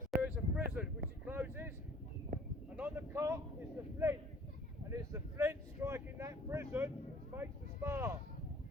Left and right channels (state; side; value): normal; both; correlation 0.52